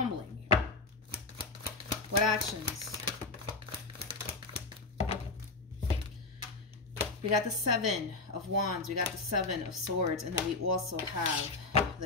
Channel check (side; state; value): right; quieter; 3.6 dB